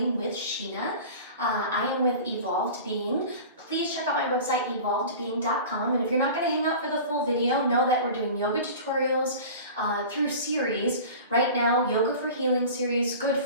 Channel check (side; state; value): both; inverted; correlation -0.37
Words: with Sheena. I am with Evolved Being. Please check out my website, evolvedbeing.com. And if you're not going to hang out for the full video, know that we're doing yoga tutorials through series. Right now, Yoga for Healing series, good